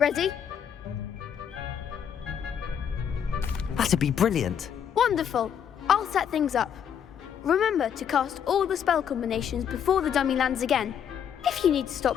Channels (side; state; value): right; quieter; 8.4 dB